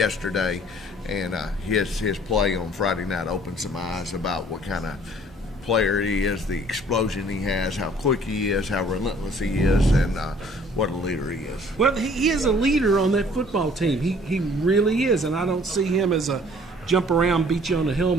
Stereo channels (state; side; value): normal; both; correlation 0.56